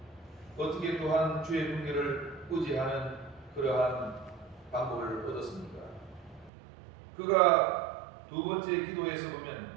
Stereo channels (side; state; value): left; drops out; at 6.5 s